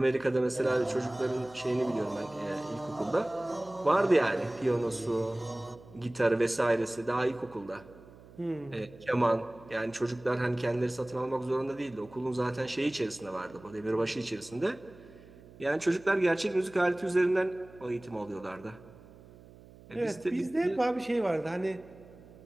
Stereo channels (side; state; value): right; noise; hum, 21 dB below the sound